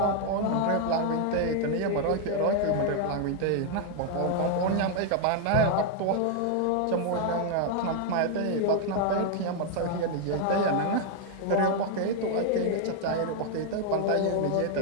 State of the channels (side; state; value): both; different; correlation 0.00